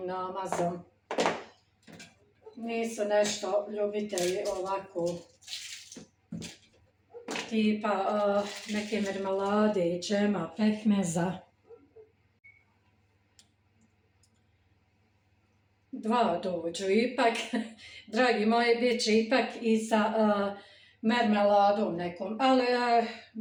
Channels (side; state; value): both; identical; correlation 1.00